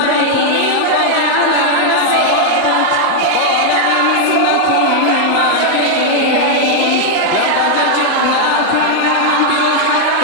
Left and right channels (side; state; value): both; different; correlation 0.00